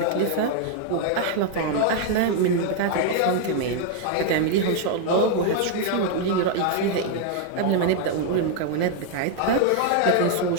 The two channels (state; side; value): different; both; correlation 0.00